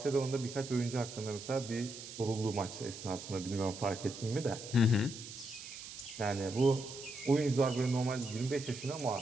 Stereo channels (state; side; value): noise; right; hiss, 12 dB below the sound